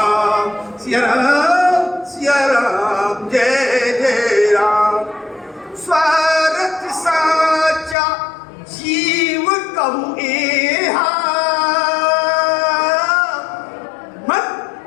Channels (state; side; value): drops out; right; at 8.0 s